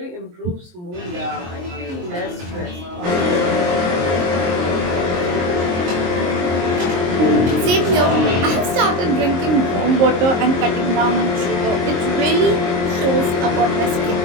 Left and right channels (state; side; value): late; left; 23 ms